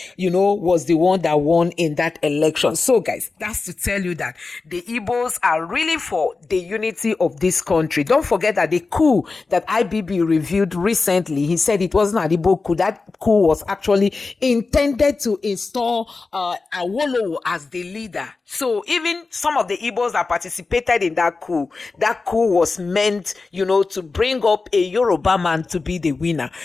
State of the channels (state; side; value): quieter; right; 4.0 dB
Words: was the one that won in that election. So, guys, that's to tell you that the Igbos are really for the unity of this country. Don't forget that the coup that IBB reviewed recently, he said it wasn't an Igbo coup. That coup was actually intended to install Awolowo as the leader. So even some of the Igbos that participated in that coup was meant, to bring up a Yoruba man to be the winner,